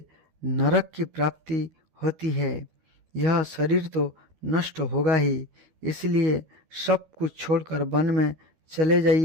नरक की प्राप्ति होती है। यह शरीर तो नष्ट होगा ही, इसलिए सब कुछ छोड़कर वन में चले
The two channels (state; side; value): late; left; 13 ms